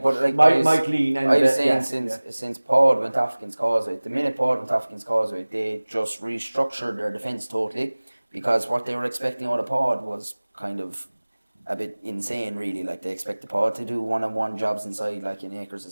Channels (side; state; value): both; inverted; correlation -1.00